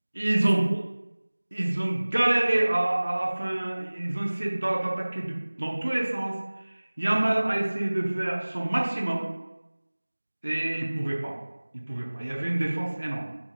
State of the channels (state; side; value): inverted; both; correlation -1.00